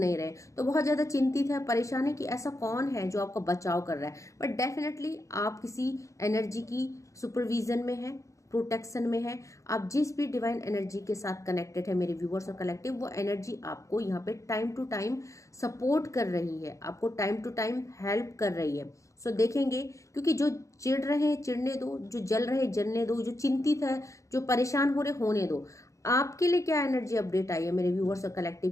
रहे। तो बहुत ज्यादा चिंतित है, परेशान है कि ऐसा कौन है जो आपका बचाव कर रहा है। बट डेफिनेटली आप किसी एनर्जी की सुपरविजन में है, प्रोटेक्शन में है। आप जिस भी डिवाइन एनर्जी के साथ कनेक्टेड है मेरे व्यूअर्स और कलेक्टिव, वो एनर्जी आपको यहाँ पे टाइम टू टाइम सपोर्ट कर रही है, आपको टाइम टू टाइम हेल्प कर रही है। सो देखेंगे, क्योंकि जो चिढ़ रहे हैं चिढ़ने दो, जो जल रहे जलने दो, जो चिंतित है, जो परेशान हो रहे होने दो। आपके लिए क्या एनर्जी अपडेट आई है मेरे व्यूअर्स और कलेक्टिव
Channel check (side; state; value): right; late; 0.15 ms